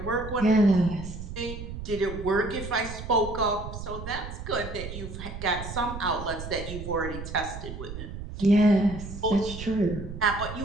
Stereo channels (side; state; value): right; noise; rumble, 9 dB below the sound